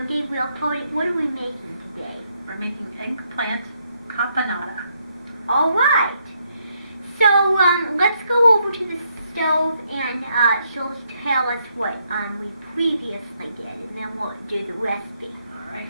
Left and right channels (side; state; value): both; inverted; correlation -0.75